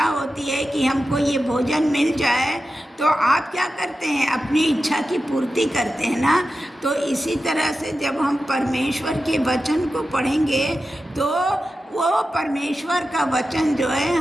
होती है कि हमको ये भोजन मिल जाए, तो आप क्या करते हैं? अपनी इच्छा की पूर्ति करते हैं ना। तो इसी तरह से जब हम परमेश्वर के वचन को पढ़ेंगे, तो वो परमेश्वर का वचन जो है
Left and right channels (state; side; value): normal; both; correlation 0.92